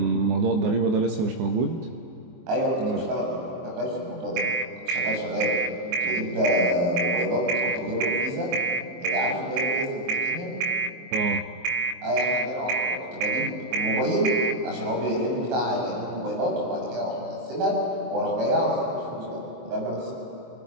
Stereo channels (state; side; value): late; left; 23 ms